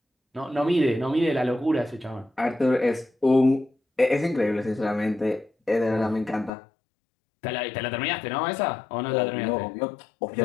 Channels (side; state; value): right; drops out; at 6.5 s